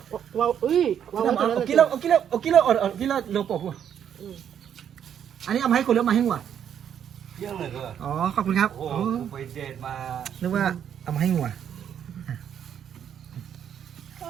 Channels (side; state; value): left; quieter; 9.0 dB